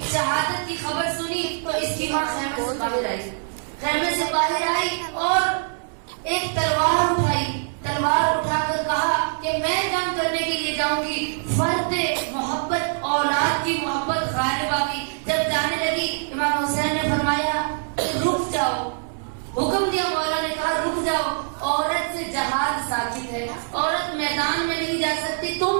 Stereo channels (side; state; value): left; silent; digital silence